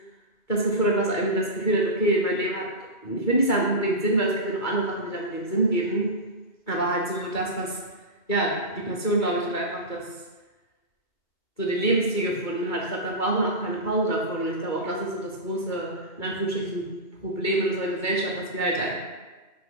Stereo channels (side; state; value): right; late; 2.3 ms